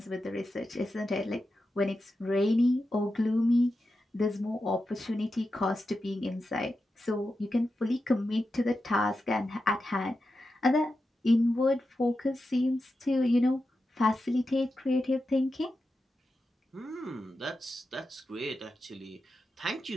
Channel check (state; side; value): normal; both; correlation 0.90